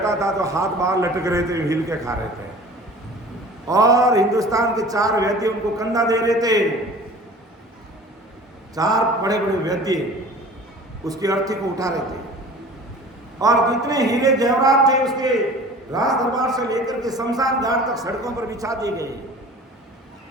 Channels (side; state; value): both; normal; correlation 0.43